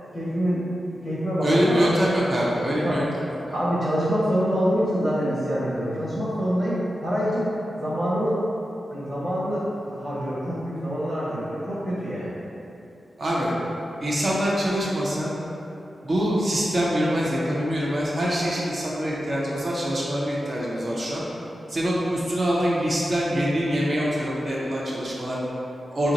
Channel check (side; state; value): both; normal; correlation 0.91